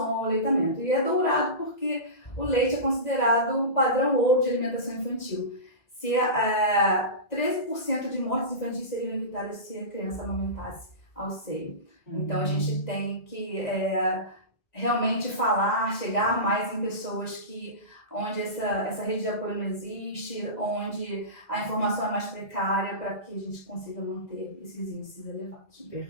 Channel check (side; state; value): right; late; 1.6 ms